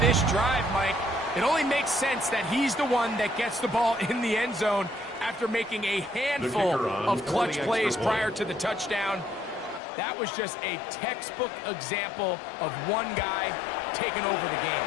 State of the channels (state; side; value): drops out; right; at 9.8 s